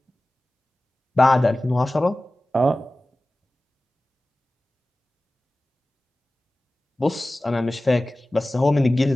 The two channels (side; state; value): both; normal; correlation 0.96